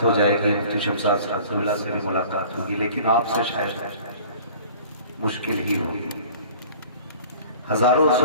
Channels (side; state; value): both; inverted; correlation -0.47